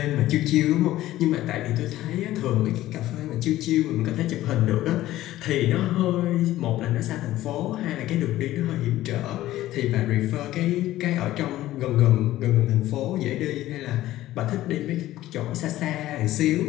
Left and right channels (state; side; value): quieter; right; 15.1 dB